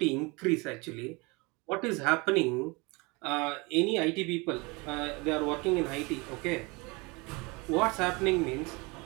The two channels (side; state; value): left; quieter; 26.9 dB